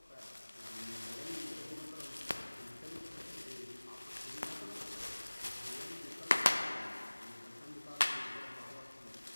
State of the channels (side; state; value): both; inverted; correlation -1.00